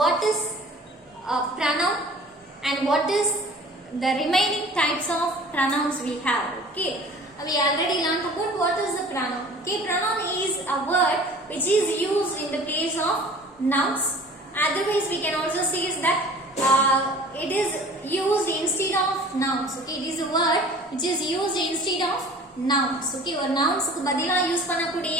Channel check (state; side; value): normal; both; correlation 0.46